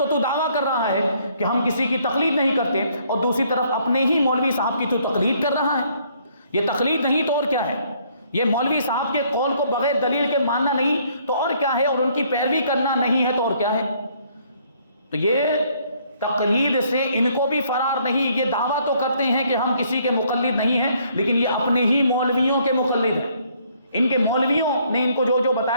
دعویٰ کر رہا ہے کہ ہم کسی کی تقلید نہیں کرتے، اور دوسری طرف اپنے ہی مولوی صاحب کی تو تقلید کر رہا ہے۔ یہ تقلید نہیں تو اور کیا ہے؟ یہ مولوی صاحب کے قول کو بغیر دلیل کے ماننا نہیں تو اور کیا ہے؟ اور ان کی پیروی کرنا نہیں ہے تو اور کیا ہے؟ تو یہ تقلید سے ان کو بھی فرار نہیں۔ یہ دعویٰ تو کرتے ہیں کہ ہم کسی کے مقلد نہیں ہیں، لیکن یہ اپنے ہی مولویوں کے مقلد ہیں، ان کے مولویوں نے ان کو جو جو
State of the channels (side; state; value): both; inverted; correlation -0.65